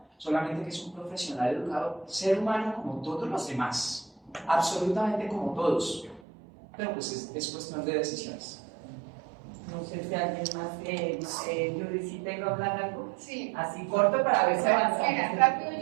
solamente que es un profesional educador, ser humano como todos los demás, absolutamente como todos, pero pues es cuestión de decisiones. No sé si alguien más, Yuri, si tengo que hablar algo. Sí. Así corto para ver si avanzamos. Mira, rápido,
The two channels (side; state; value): left; drops out; at 6.2 s